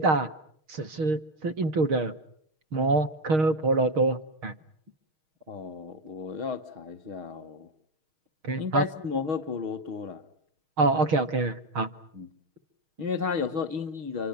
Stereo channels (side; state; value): left; late; 6.4 ms